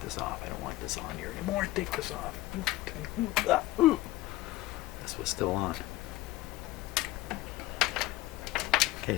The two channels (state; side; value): quieter; right; 17.1 dB